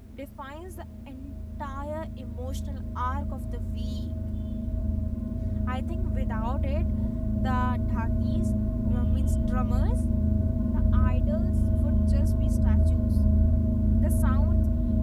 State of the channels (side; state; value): both; identical; correlation 1.00